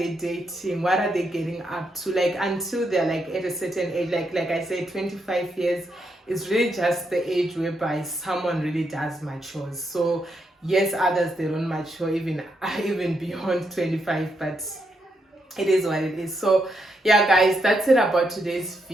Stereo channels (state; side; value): normal; both; correlation 0.80